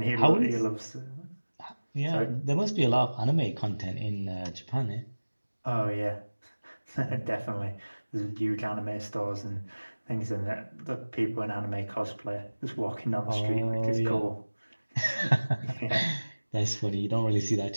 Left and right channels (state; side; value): inverted; both; correlation -1.00